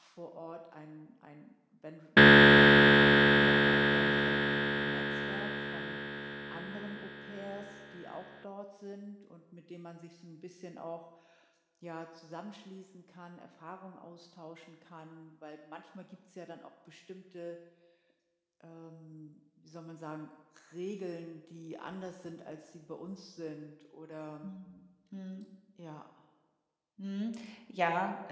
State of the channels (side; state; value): both; identical; correlation 1.00